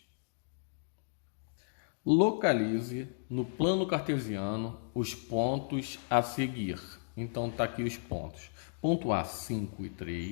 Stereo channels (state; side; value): silent; right; digital silence